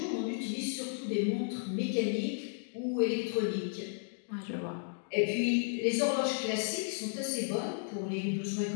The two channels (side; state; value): right; silent; digital silence